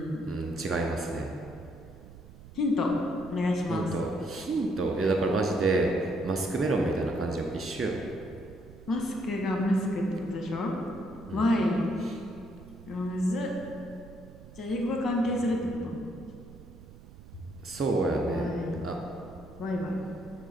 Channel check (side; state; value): right; noise; rumble, 18 dB below the sound